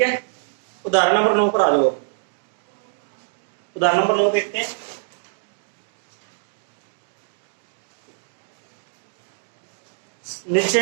है, उदाहरण नंबर 9 पर आ जाओ। उदाहरण नंबर 9 देखते हैं।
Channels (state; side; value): silent; left; digital silence